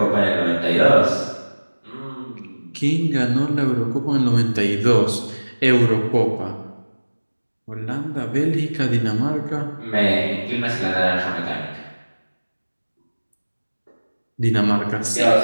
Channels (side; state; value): both; inverted; correlation -1.00